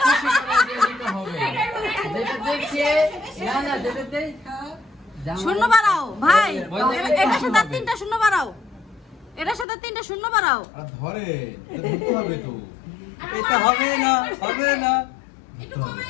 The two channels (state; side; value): drops out; right; at 9.7 s